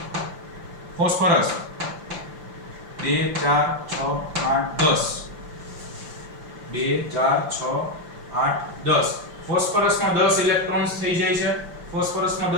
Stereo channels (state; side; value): late; left; 5.8 ms